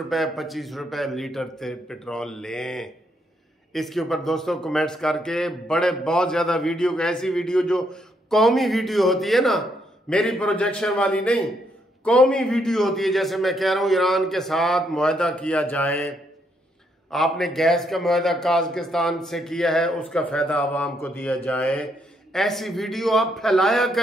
25 रुपए लीटर पेट्रोल लें। इसके ऊपर दोस्तों कमेंट्स करके बहुत ज्यादा वीडियो, ऐसी वीडियो जो कौमी वीडियो होती है ना, मेरी प्रोजेक्शन वाली नहीं, कौमी वीडियो होती है। जैसे मैं कह रहा हूं ईरान के साथ मुआहदा किया जाए, आपने गैस का मुआहदा काज़किस्तान से किया है, उसका फायदा आवाम को दिया जाए। ऐसी वीडियो आप फैलाया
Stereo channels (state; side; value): normal; both; correlation 0.75